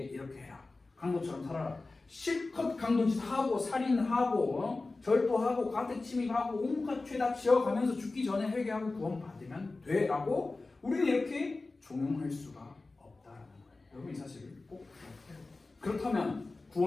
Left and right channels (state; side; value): quieter; right; 3.4 dB